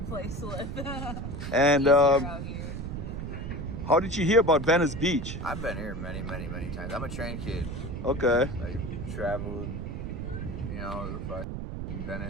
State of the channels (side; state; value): right; noise; rumble, 5 dB below the sound